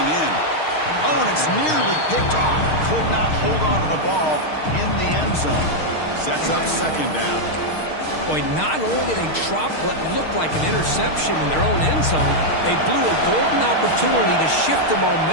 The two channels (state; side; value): late; right; 6.5 ms